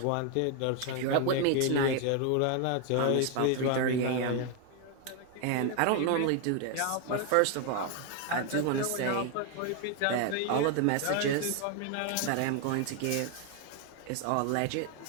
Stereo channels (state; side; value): different; both; correlation 0.01